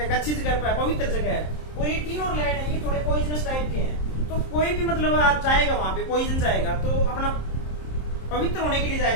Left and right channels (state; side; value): late; right; 27 ms